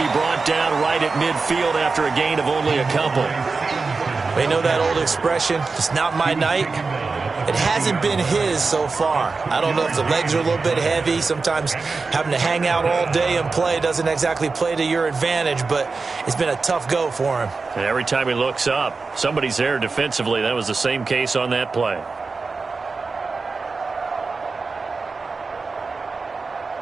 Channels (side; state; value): left; quieter; 4.2 dB